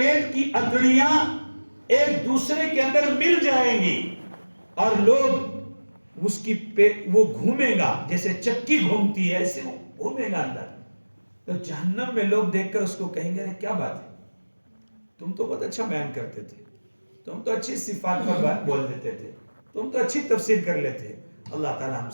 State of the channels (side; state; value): both; inverted; correlation -1.00